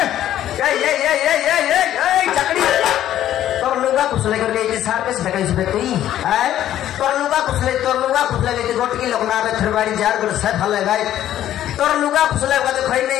ये चकड़ी तोर लुगा कुसले कर ले सार पे से कहीं से तई है तोर लुगा कुसले ले गोट की लोग ना रे थरवाड़ी जार गुड़ से फले गए तोर लुगा कुसले का तो खई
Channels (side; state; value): right; quieter; 12.1 dB